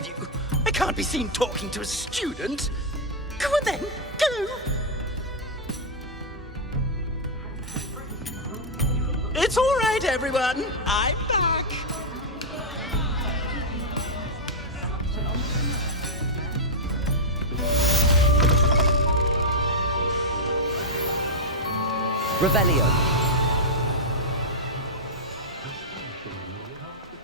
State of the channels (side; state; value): both; normal; correlation -0.05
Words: you. I can't be seen talking to a student. Go on then, go! It's all right, everyone. I'm back. Revelio.